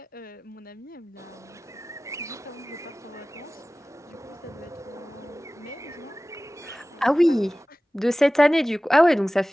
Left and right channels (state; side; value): normal; both; correlation 0.97